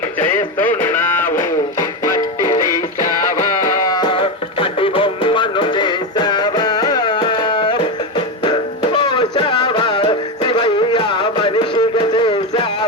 మట్టి తీసావా, మట్టి బొమ్మను చేసావా, పోసావా శివయ్య మనిషిగా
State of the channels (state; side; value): normal; both; correlation 0.13